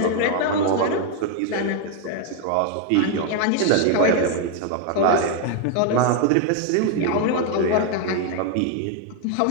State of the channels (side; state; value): both; different; correlation 0.00